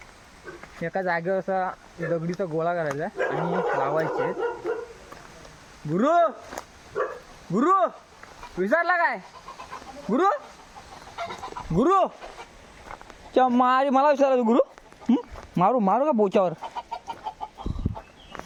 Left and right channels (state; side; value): identical; both; correlation 1.00